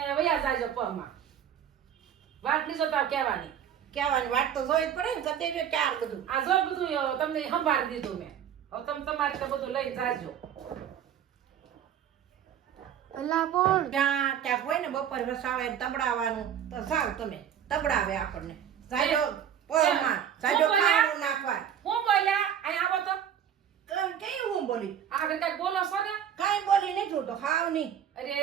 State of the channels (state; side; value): quieter; left; 9.3 dB